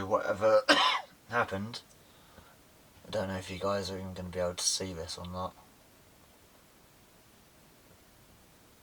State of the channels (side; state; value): both; identical; correlation 1.00